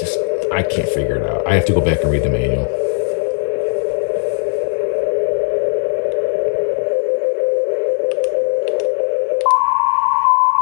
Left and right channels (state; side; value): silent; right; 65 dB below the other